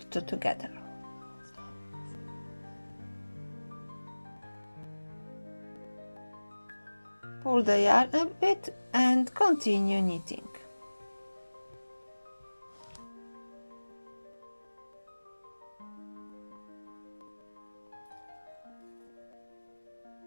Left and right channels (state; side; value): inverted; both; correlation -1.00